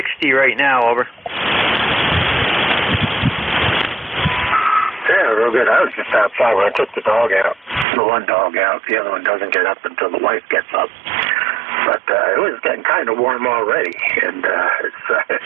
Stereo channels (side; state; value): left; drops out; at 7.9 s